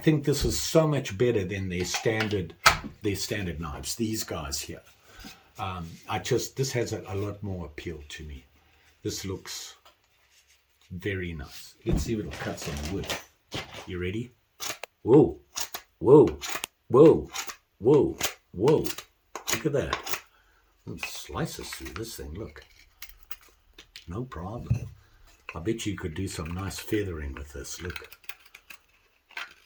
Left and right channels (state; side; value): identical; both; correlation 1.00